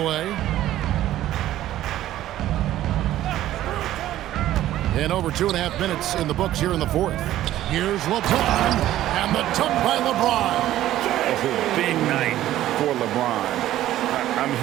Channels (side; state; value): left; quieter; 13.6 dB